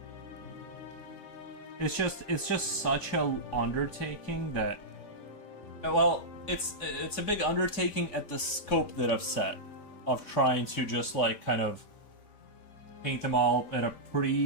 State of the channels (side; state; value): right; late; 3.5 ms